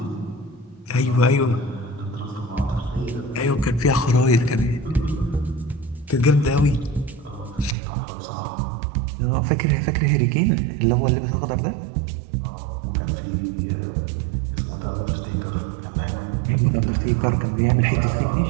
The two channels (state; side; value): drops out; left; at 7.8 s